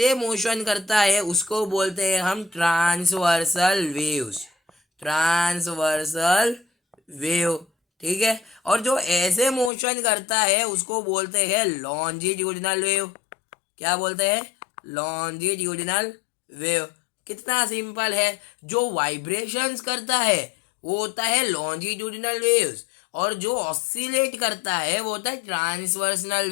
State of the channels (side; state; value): right; drops out; at 9.7 s